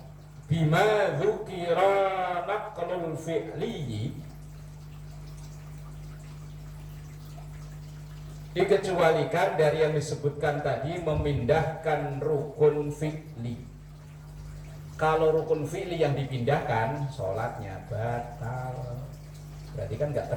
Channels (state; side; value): identical; both; correlation 1.00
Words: bima dzukira naqlul fi'li, dikecualikan dari yang disebutkan tadi memindahkan rukun fi'li. Kalau rukun fi'li yang dipindahkan, sholatnya batal. Berarti kan nggak